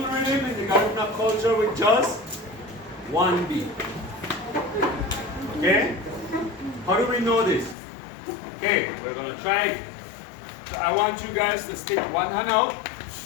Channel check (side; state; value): right; drops out; at 7.8 s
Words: rhythm in the Garifuna culture with just one beat. Okay? How do we know this? Okay, we're going to try it. So I want you guys to stick one hand out